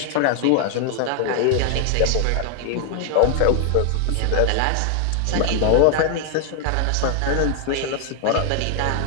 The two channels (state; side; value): different; both; correlation 0.00